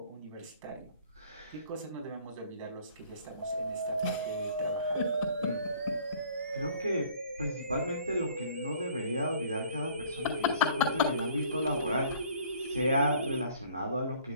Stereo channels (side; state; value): both; inverted; correlation -0.55